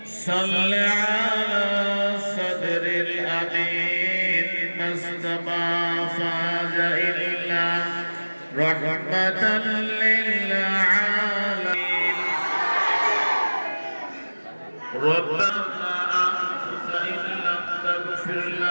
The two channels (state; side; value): inverted; both; correlation -1.00